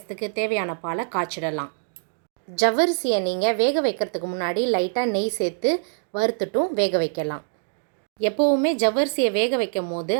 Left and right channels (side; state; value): left; silent; digital silence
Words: தேவையான பாலை காய்ச்சிடலாம். ஜவ்வரிசியை நீங்கள் வேக வைக்கிறதுக்கு முன்னாடி லைட்டாக நெய் சேர்த்து வறுத்துட்டும் வேக வைக்கலாம். எப்போவுமே ஜவ்வரிசியை வேக வைக்கும் போது